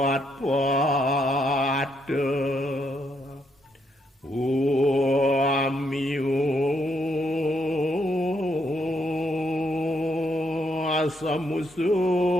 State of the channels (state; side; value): normal; both; correlation 0.76